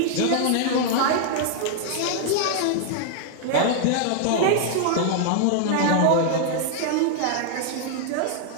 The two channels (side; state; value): both; different; correlation 0.00